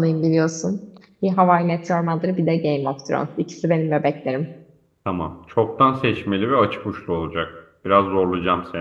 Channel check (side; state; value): both; identical; correlation 1.00